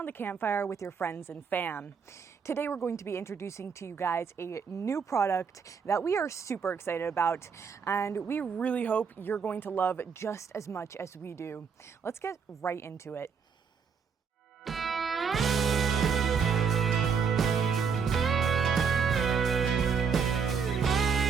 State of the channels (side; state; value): left; quieter; 6.2 dB